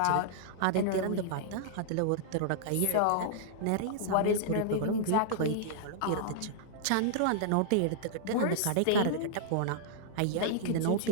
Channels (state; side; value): different; both; correlation -0.01